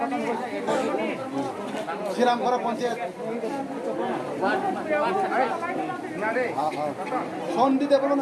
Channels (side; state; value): both; identical; correlation 1.00